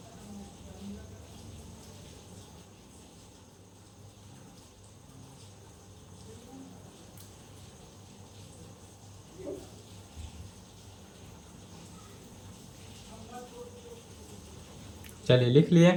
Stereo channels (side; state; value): both; identical; correlation 1.00